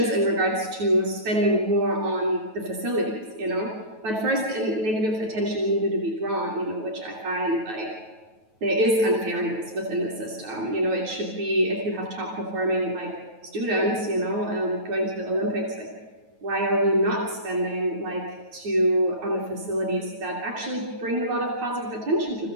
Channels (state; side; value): late; left; 9.2 ms